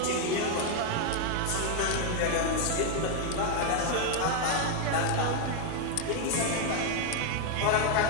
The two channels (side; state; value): both; different; correlation 0.01